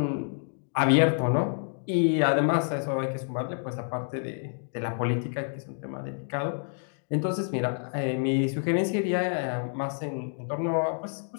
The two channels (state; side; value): silent; right; 59 dB below the other